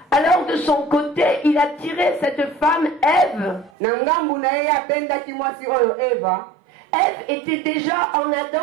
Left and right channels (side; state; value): left; drops out; at 3.7 s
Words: alors de son côté, il a tiré cette femme Ève. Ève était déjà en